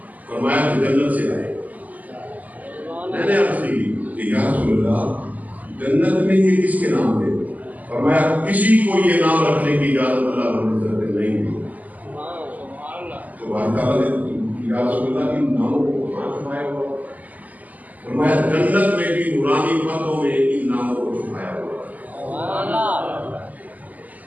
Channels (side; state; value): left; late; 0.078 ms